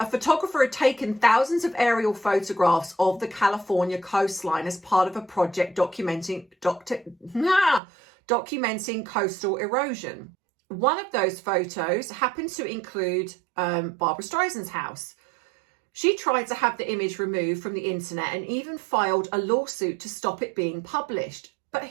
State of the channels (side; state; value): left; drops out; at 7.8 s